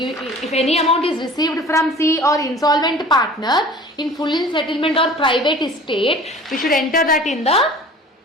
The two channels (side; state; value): both; normal; correlation 0.44